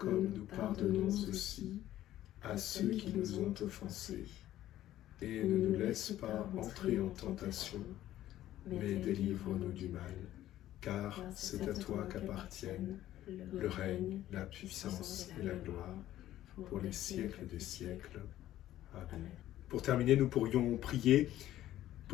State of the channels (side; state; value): right; quieter; 13.5 dB